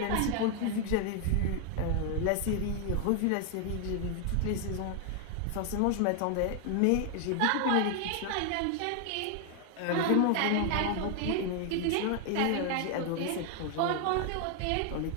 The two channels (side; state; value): both; different; correlation 0.00